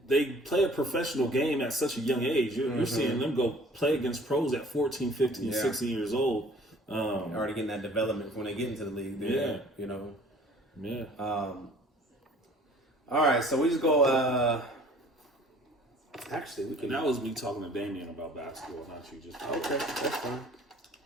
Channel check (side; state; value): both; normal; correlation 0.52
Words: play a professional game at such a young age. You're seeing them go play against pros at 14, 15, 16 years old. Already getting that development when they get into the league. There, you know. Yeah. All right, so we just go. Actually, we can. And that was me talking to Damien about basketball, not you. Just okay, that's fine.